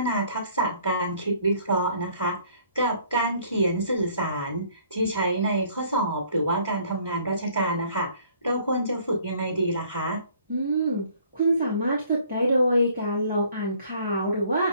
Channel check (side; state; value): both; inverted; correlation -0.58